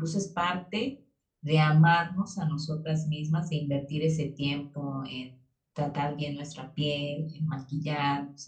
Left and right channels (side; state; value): both; identical; correlation 1.00